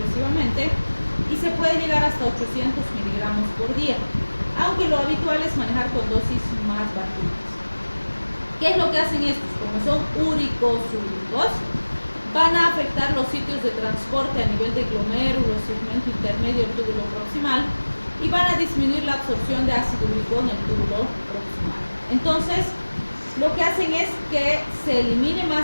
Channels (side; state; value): both; inverted; correlation -1.00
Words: y se puede llegar hasta 800 miligramos por día, aunque lo habitual es manejar con dosis más bajitas. ¿Qué es lo que hacen estos? Como son úricos-súricos, van a afectar los sitios de transporte a nivel de glomérulo, segmento intermedio del túbulo proximal y van a disminuir la absorción de ácido úrico en el túbulo proximal. Entonces, lo que hacen es que se elimine